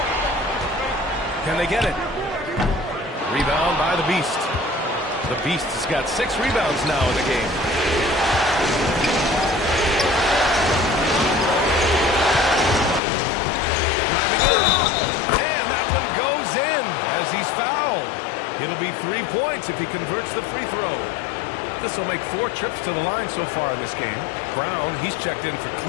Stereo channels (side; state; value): right; drops out; at 13.0 s